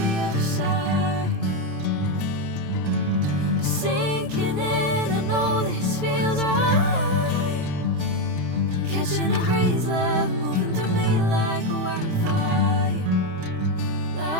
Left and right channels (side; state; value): left; late; 28 ms